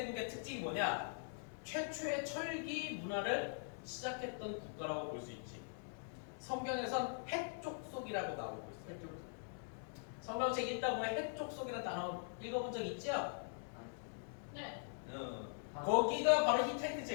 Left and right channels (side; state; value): right; silent; digital silence